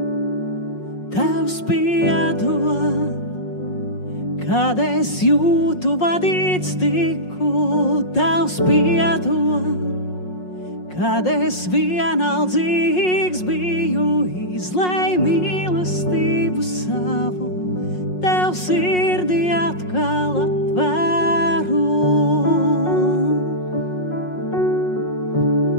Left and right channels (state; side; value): late; right; 5.5 ms